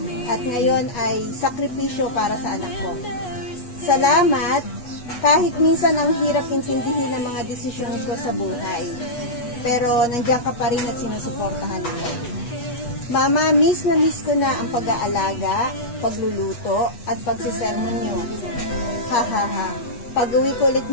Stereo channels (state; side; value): late; right; 8.2 ms